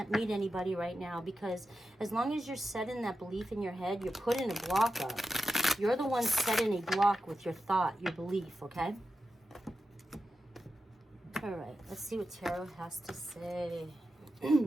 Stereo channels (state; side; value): normal; both; correlation 0.90